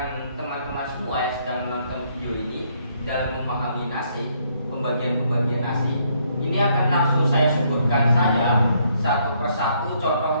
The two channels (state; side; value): inverted; both; correlation -0.70